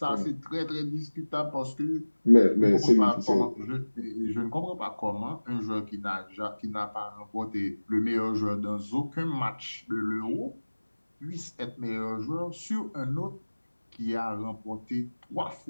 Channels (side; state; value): both; inverted; correlation -1.00